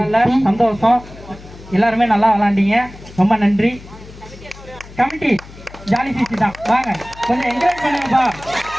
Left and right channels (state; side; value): noise; left; hum, 18 dB below the sound